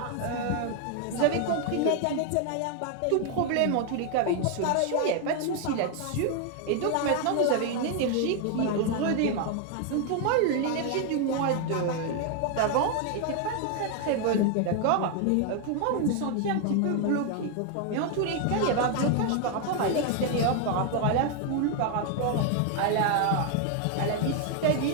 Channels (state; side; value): different; both; correlation 0.00